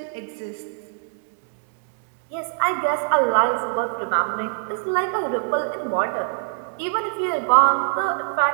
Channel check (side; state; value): left; silent; digital silence